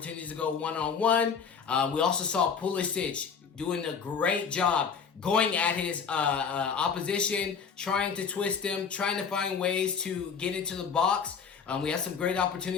to go one-on-one. We also saw Pulisic doing a great job going at his opposition, trying to twist him, trying to find ways to get into the box. We had some great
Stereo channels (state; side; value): quieter; right; 6.2 dB